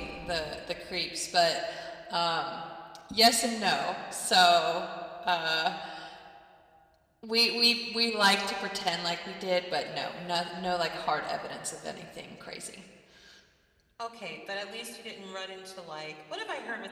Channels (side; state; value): both; identical; correlation 1.00